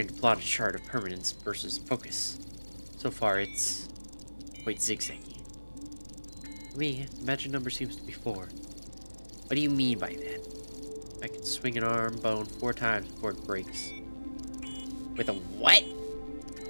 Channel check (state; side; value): inverted; both; correlation -1.00